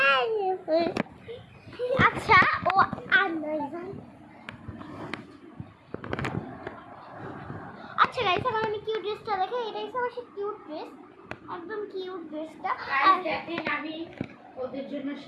আচ্ছা, ও আর আচ্ছা গাইস, এখন আমি কিউট ড্রেসটা দেখে। এটাই আমার সেই কিউট ড্রেস, একদম কিউট ড্রেসটা। দেখেন আমি ওদের জন্য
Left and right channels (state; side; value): identical; both; correlation 1.00